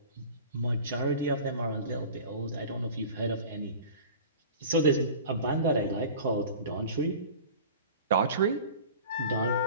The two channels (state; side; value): inverted; both; correlation -0.39